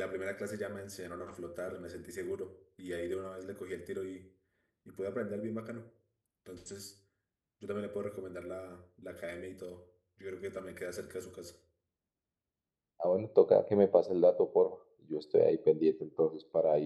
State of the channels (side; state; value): both; identical; correlation 1.00